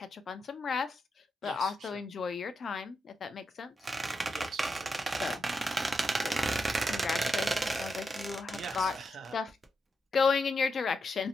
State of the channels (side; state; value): both; normal; correlation 0.86